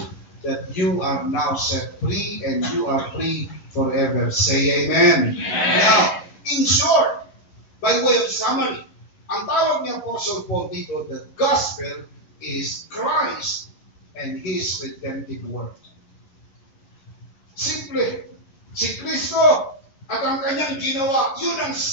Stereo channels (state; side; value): late; right; 11 ms